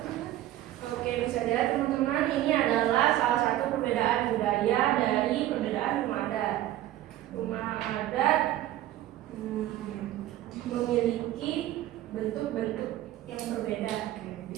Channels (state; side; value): quieter; left; 14.1 dB